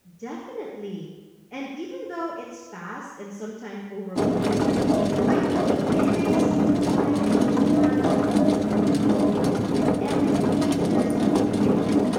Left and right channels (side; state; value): both; identical; correlation 1.00